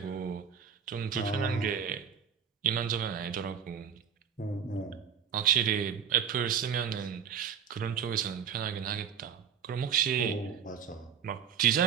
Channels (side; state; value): left; quieter; 7.8 dB